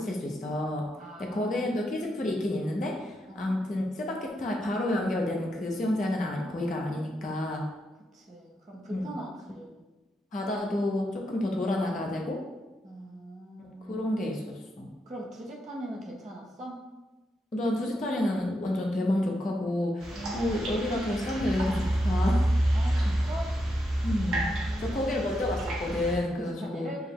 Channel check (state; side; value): normal; both; correlation 0.82